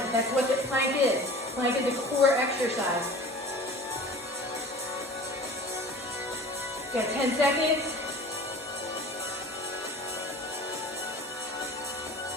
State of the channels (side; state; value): both; normal; correlation 0.41